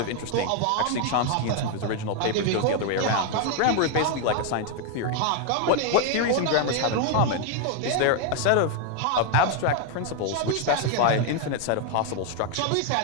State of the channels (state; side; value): different; both; correlation 0.01